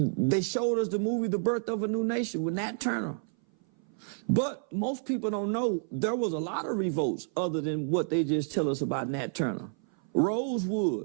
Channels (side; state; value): left; silent; 57 dB below the other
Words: showed us the movie The Birth of a New Nation with Nat Turner. But most people don't know there was a lot of revolts other than what they just tell us about Nat Turner.